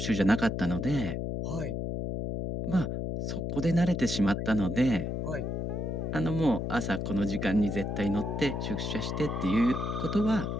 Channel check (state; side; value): noise; left; hum, 2 dB below the sound